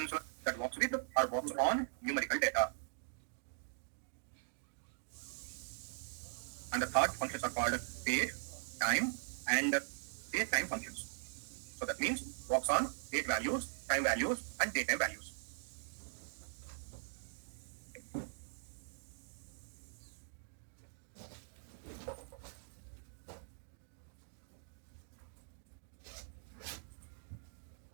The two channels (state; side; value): silent; left; digital silence